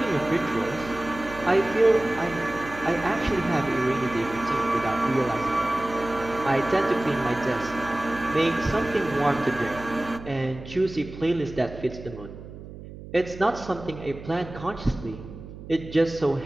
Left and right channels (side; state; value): right; noise; hum, 14 dB below the sound